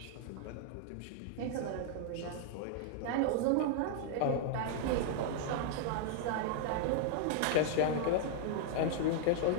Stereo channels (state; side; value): different; both; correlation 0.00